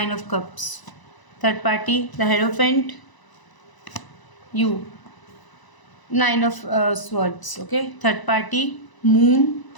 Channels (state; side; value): late; right; 1.0 ms